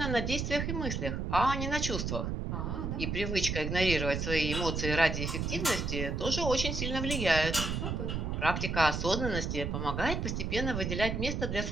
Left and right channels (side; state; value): right; noise; rumble, 2 dB below the sound